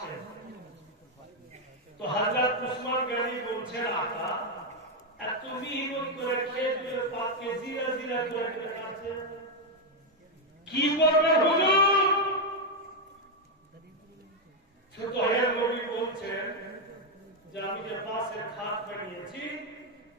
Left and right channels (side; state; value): both; normal; correlation 0.02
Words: তো হযরত উসমান গনি বলছেন, আকা এত মেহনত করে খেজুরের পাতকে জিরা জিরা করে কাটছেন, কি করবেন হুজুর? ছোট হয়ে নবী বলছেন যে আমি যে বাঁশের খাট বানিয়েছি